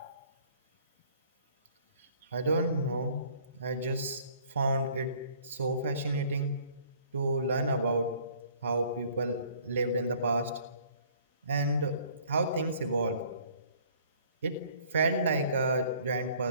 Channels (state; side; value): inverted; both; correlation -0.57